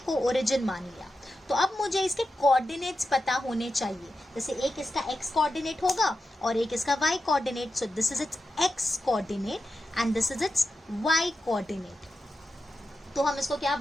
ओरिजिन मान लिया। तो अब मुझे इसके कोऑर्डिनेट्स पता होने चाहिए। जैसे एक इसका एक्स कोऑर्डिनेट होगा और एक इसका y coordinate. So this is its x coordinate and this is its y coordinate. तो हम इसको क्या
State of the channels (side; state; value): both; normal; correlation 0.90